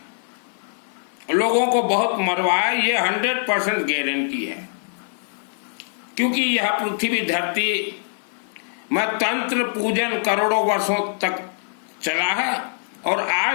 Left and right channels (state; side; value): silent; right; 55 dB below the other